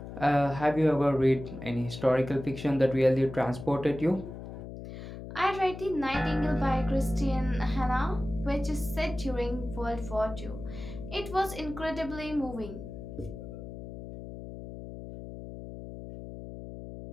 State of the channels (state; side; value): noise; left; hum, 11 dB below the sound